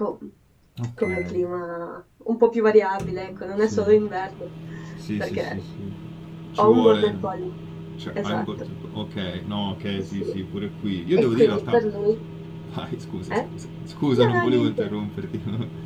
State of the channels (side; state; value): both; identical; correlation 1.00